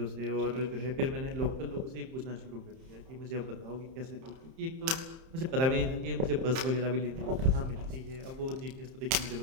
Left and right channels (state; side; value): late; left; 30 ms